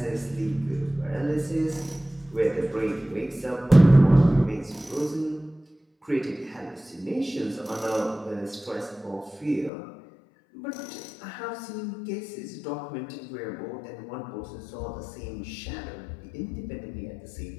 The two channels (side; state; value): right; drops out; at 9.7 s